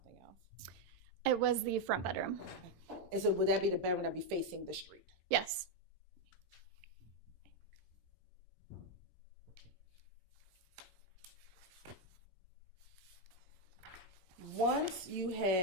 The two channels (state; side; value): late; left; 16 ms